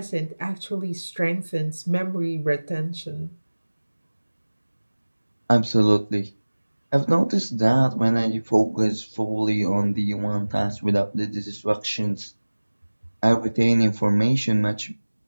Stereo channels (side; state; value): both; inverted; correlation -1.00